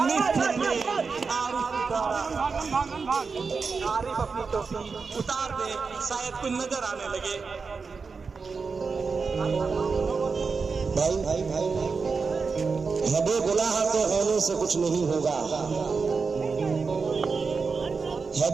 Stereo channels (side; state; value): left; quieter; 4.9 dB